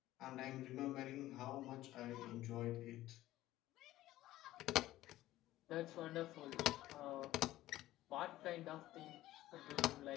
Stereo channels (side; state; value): right; quieter; 15.4 dB